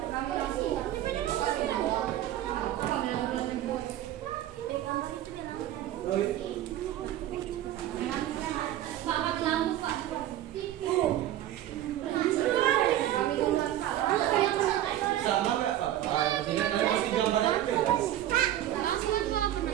Sama nggak Pak? Yang penting kalian pasti gambarnya beda.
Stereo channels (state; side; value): quieter; left; 12.9 dB